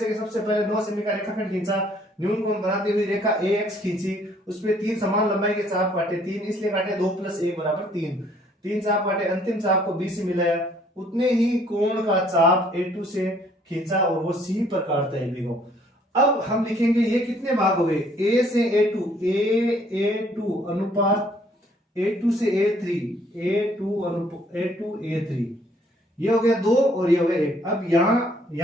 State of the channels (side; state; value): both; normal; correlation 0.62